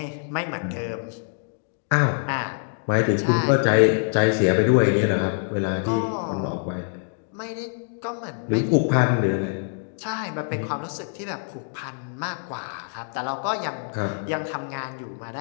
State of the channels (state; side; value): silent; right; 62 dB below the other